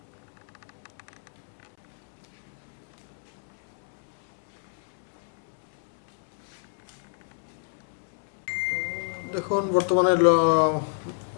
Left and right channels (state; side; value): silent; right; 60 dB below the other